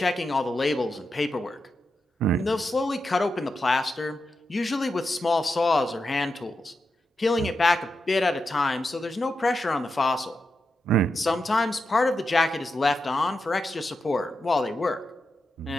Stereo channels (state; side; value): normal; both; correlation 0.88